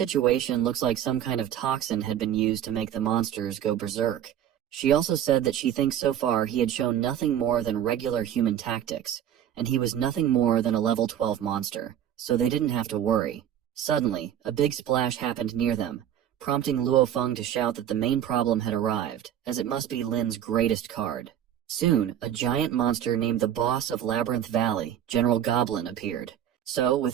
looks like some kind of toxin had been used to make the monsters go berserk. She also said that she thinks so far he had shown nothing more than regular human tactics, and he was nothing more than a level 12 monster, so they didn't have to worry. Suddenly, a big splash happened near them, prompting Luofeng to shout that the main problem had arrived, as it must be Lin's greatest card. Soon, a giant monster named the boss of Labyrinth Valley, General Goblin, appeared. So,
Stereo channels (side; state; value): left; quieter; 10.4 dB